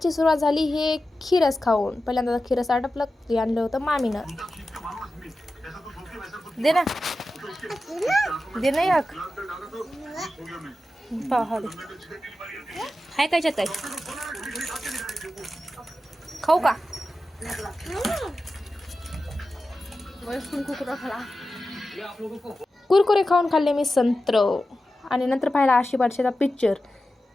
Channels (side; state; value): both; normal; correlation 0.92